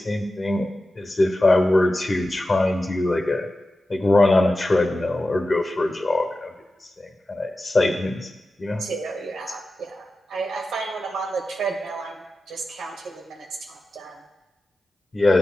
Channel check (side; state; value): both; normal; correlation 0.93